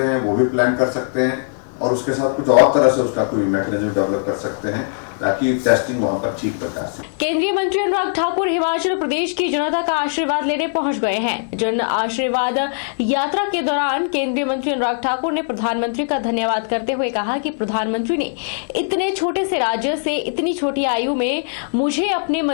हैं, वो भी प्लान कर सकते हैं और उसके साथ कुछ और तरह से उसका कोई मैकेनिज्म डेवलप कर सकते हैं ताकि टेस्टिंग वहां पर ठीक प्रकार से। केंद्रीय मंत्री अनुराग ठाकुर हिमाचल प्रदेश की जनता का आशीर्वाद लेने पहुंच गए हैं। जन आशीर्वाद यात्रा के दौरान केंद्रीय मंत्री अनुराग ठाकुर ने प्रधानमंत्री का धन्यवाद करते हुए कहा कि प्रधानमंत्री ने इतने छोटे से राज्य से इतनी छोटी आयु में मुझे अपने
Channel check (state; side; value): silent; right; 66 dB below the other